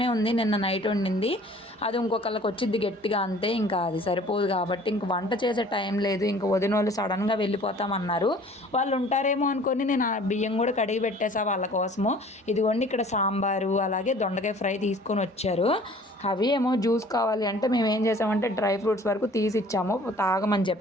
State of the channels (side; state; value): both; normal; correlation 0.51